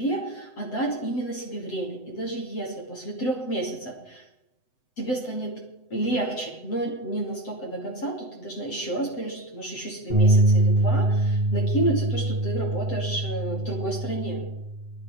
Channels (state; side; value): late; right; 7.9 ms